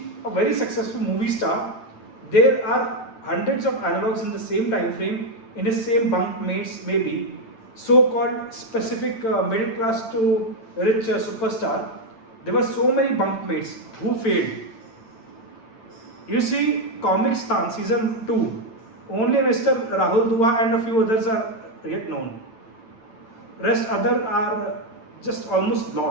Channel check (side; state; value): right; late; 9.0 ms